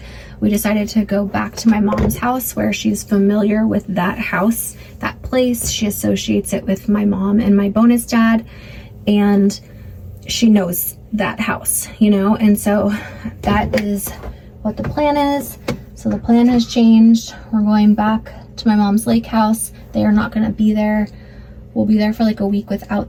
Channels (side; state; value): both; identical; correlation 1.00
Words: we decided to go back to my mom's house, where she's familiar with that house, that place. She associates it with my mom and my bonus dad, and she knows that house, you know? And so that is what the plan is. So the plan has changed. We're going back to my mom's lake house. They are not going to be there. We'll be there for like a week without